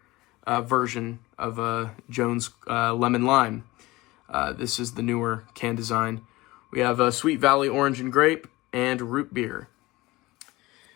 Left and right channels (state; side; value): quieter; right; 20.3 dB